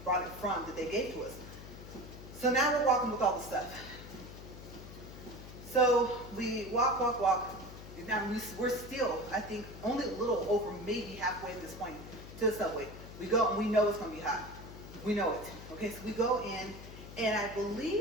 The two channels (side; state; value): left; noise; hum, 14 dB below the sound